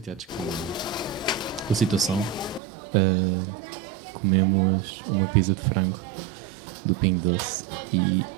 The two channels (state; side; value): drops out; left; at 2.6 s